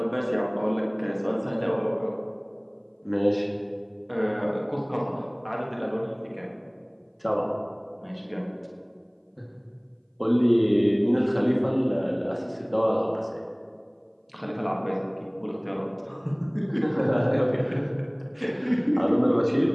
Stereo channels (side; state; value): both; identical; correlation 1.00